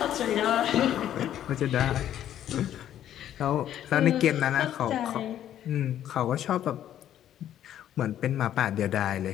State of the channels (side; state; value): right; quieter; 11.2 dB